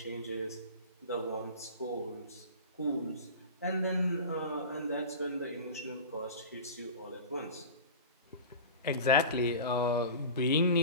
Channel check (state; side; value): inverted; both; correlation -0.33